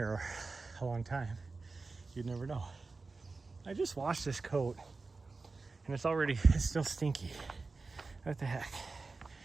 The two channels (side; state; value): left; quieter; 3.9 dB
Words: a long time, you'd never know. I just washed this coat and it's still stinky. What the heck?